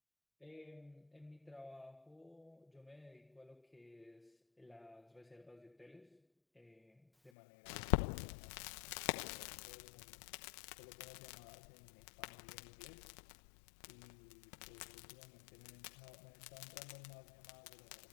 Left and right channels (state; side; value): drops out; right; at 7.3 s